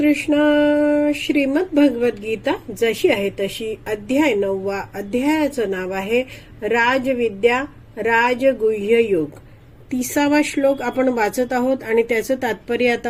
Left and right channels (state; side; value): identical; both; correlation 1.00